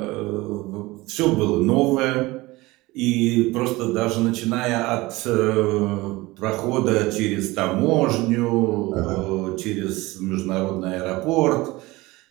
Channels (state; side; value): quieter; left; 20.7 dB